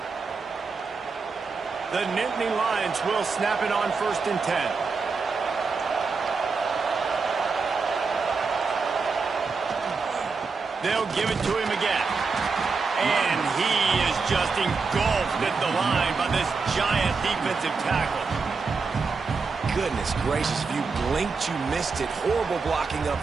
The Nittany Lions will snap it on 1st and 10. They'll give it to him again. And he is just engulfed at the line by this giant defensive tackle. Goodness gracious, if you blinked, you missed it. Horrible blocking up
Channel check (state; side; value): quieter; left; 4.7 dB